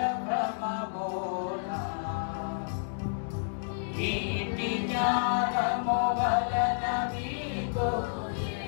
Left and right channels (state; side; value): silent; right; digital silence